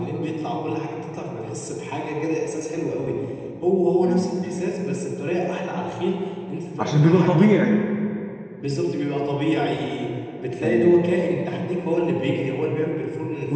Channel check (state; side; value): identical; both; correlation 1.00